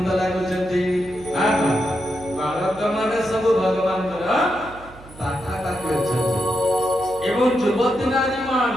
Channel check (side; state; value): right; noise; hum, 20 dB below the sound